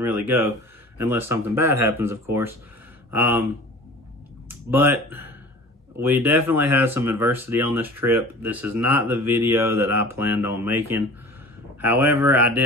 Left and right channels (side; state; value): both; normal; correlation 0.42